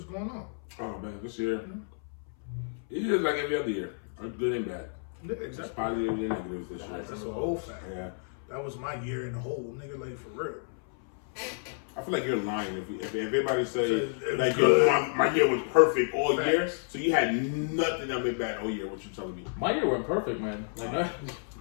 going on. Oh man, this year. It is like every other year. Good and bad. Yeah, It's exactly. positive and negative this year. That's a whole fact. Yeah. That was my year in the whole, nigga, like for real. I feel like you're lying if everybody say It was like good. my year was perfect all Facts. year, so you had nothing that went bad all year. What you telling me? My year went perfect, man. Like, no,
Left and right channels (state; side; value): silent; right; 58 dB below the other